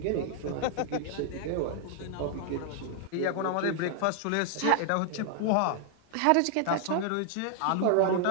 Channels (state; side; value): different; both; correlation 0.00